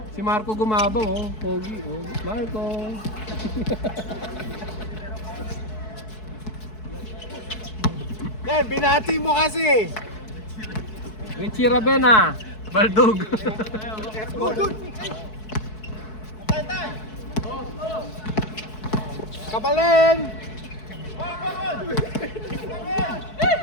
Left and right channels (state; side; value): late; right; 4.6 ms